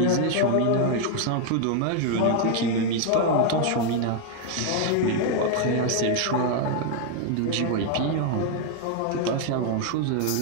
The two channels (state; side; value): different; both; correlation 0.01